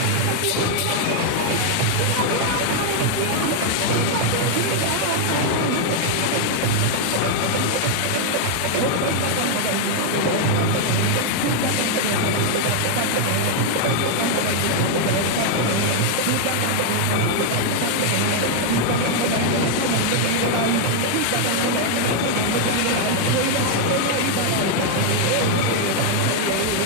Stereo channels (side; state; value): both; different; correlation 0.00